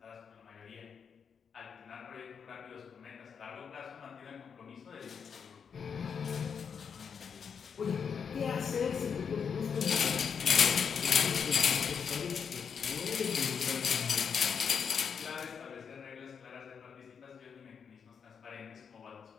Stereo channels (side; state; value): right; quieter; 6.6 dB